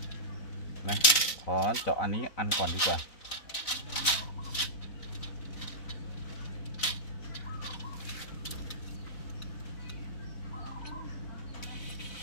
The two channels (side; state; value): right; late; 4.0 ms